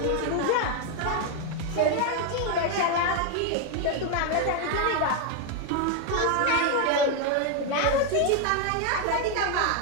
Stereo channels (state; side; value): different; both; correlation 0.01